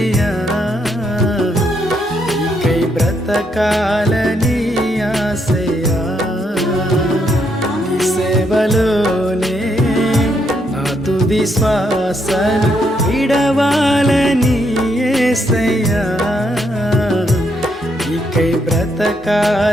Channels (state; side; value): normal; both; correlation 0.76